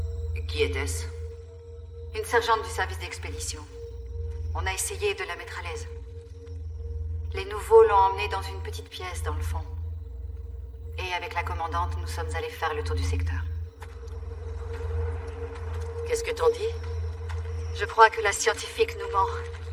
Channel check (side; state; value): both; identical; correlation 1.00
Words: Qui était-ce? Une sergente du service d'expédition. On a essayé de la mettre à l'aise. Les nouveaux l'ont emmenée dans une petite pièce dans le fond. Et avec la commandante, nous sommes allés faire le tour du secteur. Qu'est-ce que t'en dis? Je crois que la scientifique nous ment.